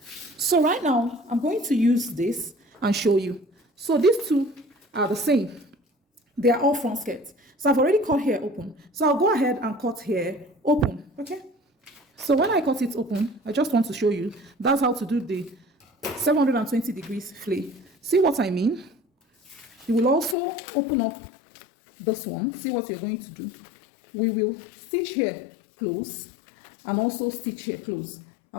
So right now I'm going to use this and show you. So these two are the same. They are all front skirts. So I've already cut here open. So I'll go ahead and cut here open. Okay, So when I cut it open, I just want to show you, that's how to do the 720 degrees flay. See what I mean? You will also open up this one. See what you're going to do. We will stitch here close and also stitch here close.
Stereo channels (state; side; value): drops out; right; at 20.4 s